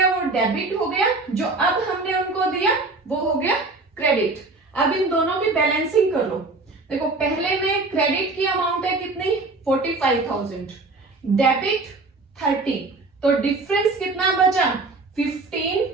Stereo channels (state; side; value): quieter; left; 3.5 dB